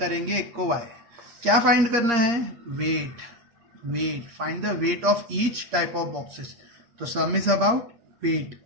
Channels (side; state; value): left; late; 8.6 ms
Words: एक को वाई। क्या फाइंड करना है? Weight. Find the weight of each type of boxes. तो sum is about weight,